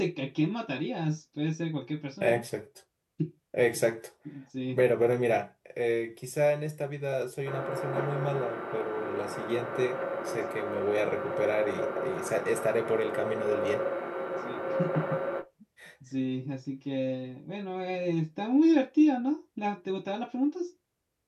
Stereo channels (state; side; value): identical; both; correlation 1.00